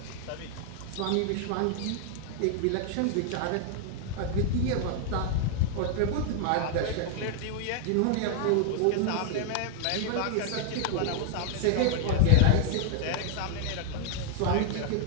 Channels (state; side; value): different; both; correlation 0.00